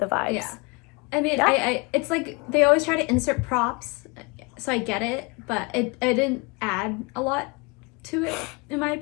vibes. Yeah. I mean, it's like they always try to insert props, so I get it, but it didn't add a lot to it, in my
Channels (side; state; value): right; quieter; 28.6 dB